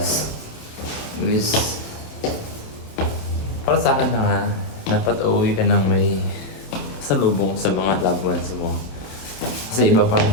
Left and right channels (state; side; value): late; right; 27 ms